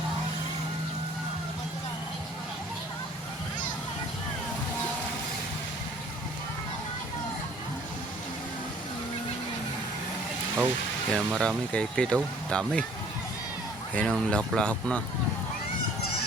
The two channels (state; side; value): normal; both; correlation 0.55